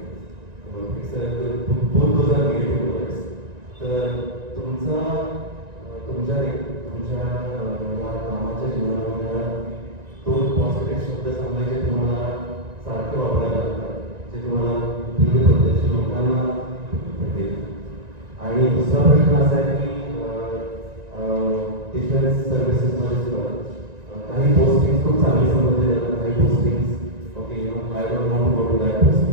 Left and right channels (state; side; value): late; left; 1.9 ms